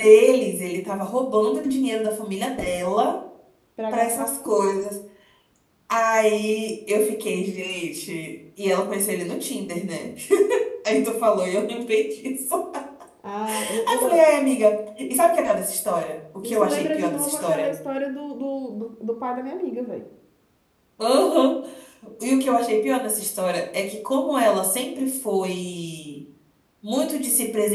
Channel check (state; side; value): identical; both; correlation 1.00